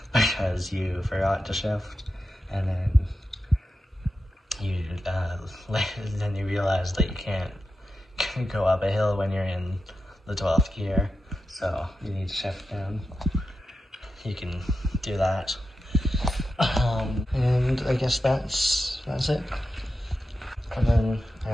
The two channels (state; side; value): normal; both; correlation 0.89